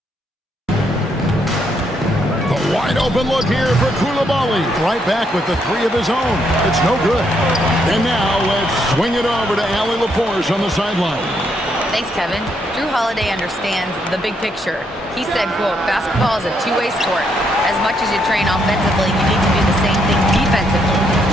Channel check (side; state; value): both; normal; correlation 0.75